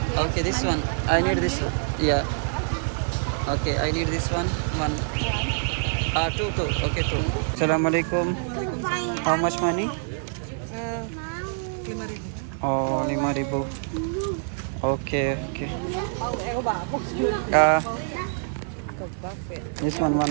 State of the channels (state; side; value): silent; left; 61 dB below the other